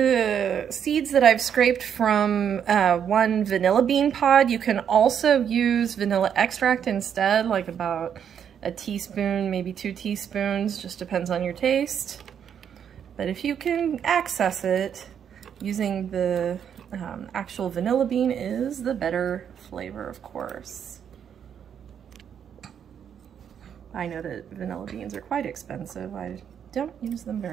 seeds that I've scraped from one vanilla bean pod. You can also use vanilla extract instead, like about a teaspoon, maybe 2 teaspoons, just depends on your taste. But if you can access it, using the actual vanilla bean is the better flavor, of course. I know that vanilla beans are quite expensive. I don't use them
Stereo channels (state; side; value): quieter; left; 8.4 dB